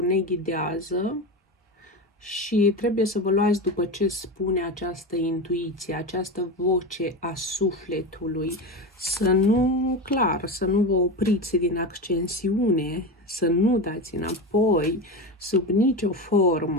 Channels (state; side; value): normal; both; correlation 0.21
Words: ne ghidează și trebuie să vă luați după ce spune această intuiție, această voce a sufletului. Să nu, clar, să nu vă opriți din ascensiune, să nu dați înapoi sub nicio